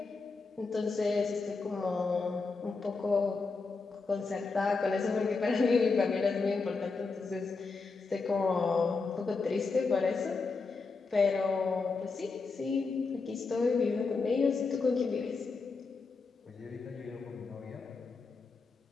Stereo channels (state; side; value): quieter; right; 4.3 dB